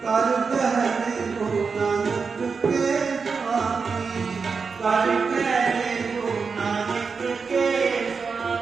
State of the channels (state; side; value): quieter; left; 5.2 dB